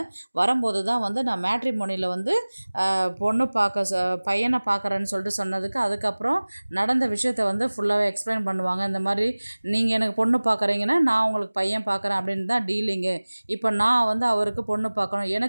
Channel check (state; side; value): inverted; both; correlation -1.00